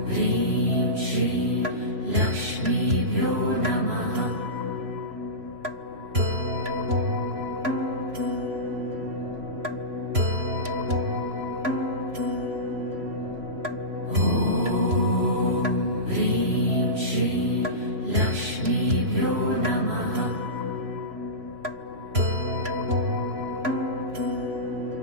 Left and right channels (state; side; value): late; left; 3.0 ms